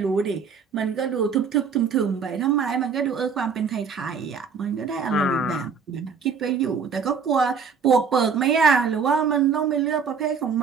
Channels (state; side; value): quieter; left; 5.9 dB